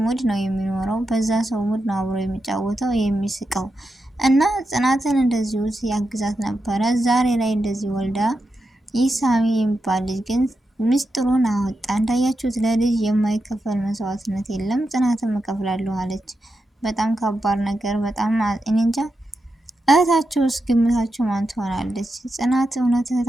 ሙድ ነው የሚኖረው፣ በዛ ሰው ሙድ ነው አብሮ የሚጫወተው የሚስቀው። እና ጽናትን እንደዚሁ ያግዛት ነበረ። ዛሬ ላይ እንደዚህ ወልዳ ኢሳሚ የሚባል ልጅ ግን ምስጢሩን አወጣ። እንዳያችሁት ለልጅ የማይከፈል መስዋዕትነት የለም። ጽናትን እከፍላለሁ አለች። በጣም ከባድ ነገር። በጣም እኔ እንጃ። እህታቸውስ ግምታቸው ማን ትሆናለች? ጽናት እውነት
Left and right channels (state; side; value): normal; both; correlation 0.88